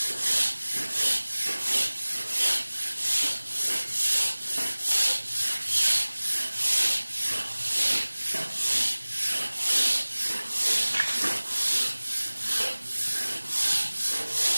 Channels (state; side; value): inverted; both; correlation -1.00